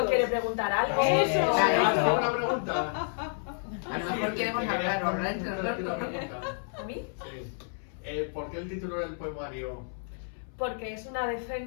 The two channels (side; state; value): right; silent; 58 dB below the other